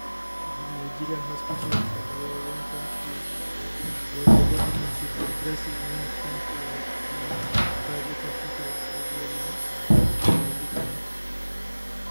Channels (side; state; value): both; inverted; correlation -1.00